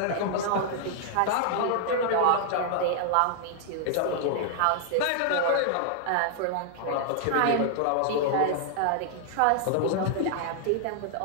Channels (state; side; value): different; both; correlation -0.01